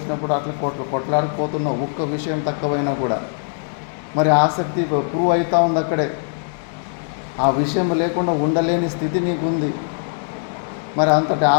అట్లా కొట్లాడిపోతున్నావు, ఒక్క విషయం తక్కువైనా కూడా. మరి ఆసక్తి ప్రూవ్ అవుతా ఉంది అక్కడే. ఆ విషయం లేకుండా ఉండలేని స్థితి నీకుంది. మరి అంతటి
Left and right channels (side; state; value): right; silent; digital silence